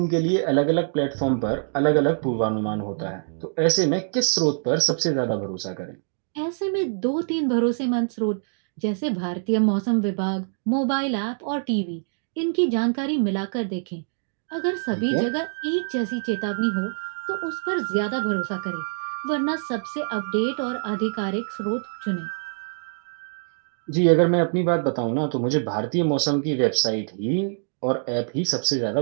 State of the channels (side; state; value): left; silent; digital silence